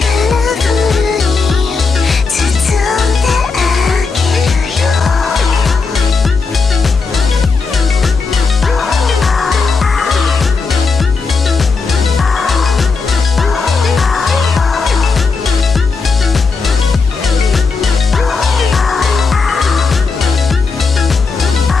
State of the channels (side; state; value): right; quieter; 4.5 dB